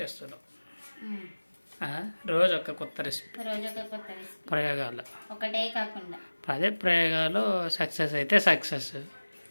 రోజు ఒక కొత్త రెసిపీ, ప్రయోగాలు ఒకటే కాకుండా అదే ప్రయోగాలు సక్సెస్ అయితే సక్సెస్,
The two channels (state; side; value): inverted; both; correlation -1.00